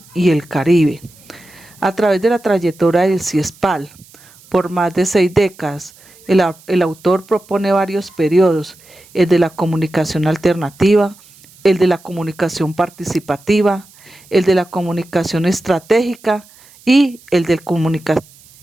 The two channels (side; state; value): right; noise; hiss, 26 dB below the sound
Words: y el Caribe. A través de la trayectoria del CIESPAL, por más de 6 décadas, el autor propone varios periodos: el de la comunicación alternativa, el de la comunicación participativa, el de la comunicación estratégica y el de